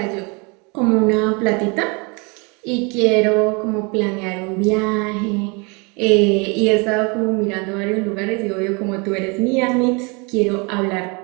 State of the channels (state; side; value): quieter; left; 30.7 dB